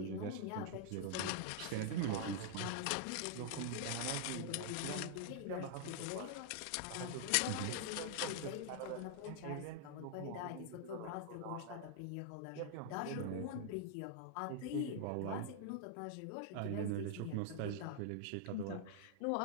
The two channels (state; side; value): different; both; correlation 0.00